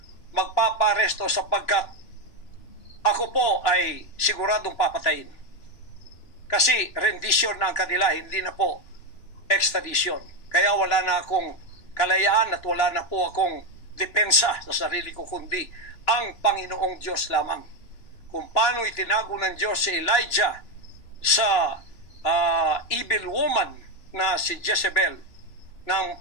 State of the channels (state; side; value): late; right; 2.9 ms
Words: magpaparesto sapagkat ako po ay siguradong papatayin. Kasi rendition na ang kanila, hindi na po extradition. Kaya wala na akong kalayaan at wala na po akong depensa sa sarili ko, kundi ang Panginoong Diyos lamang. Kung paano itinago ng Diyos si Elijah sa evil woman na si Jezebel, nang